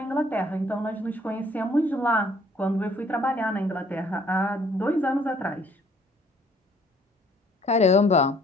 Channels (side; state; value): both; normal; correlation 0.61